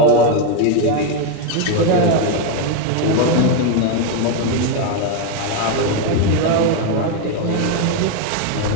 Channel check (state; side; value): different; both; correlation 0.01